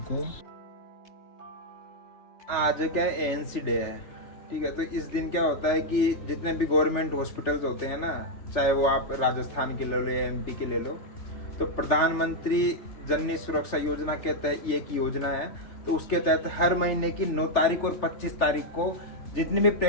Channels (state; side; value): late; right; 3.4 ms